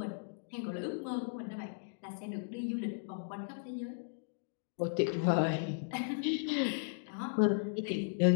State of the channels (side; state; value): right; silent; digital silence